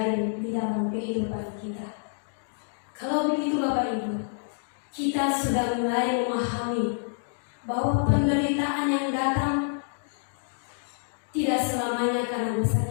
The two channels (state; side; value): silent; right; digital silence